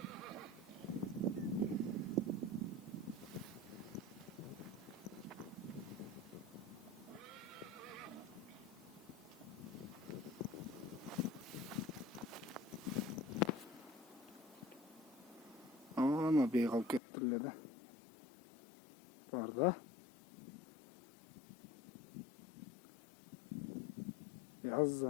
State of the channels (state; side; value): drops out; right; at 17.0 s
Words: Ama beygal kettirle de. Barda. Yaz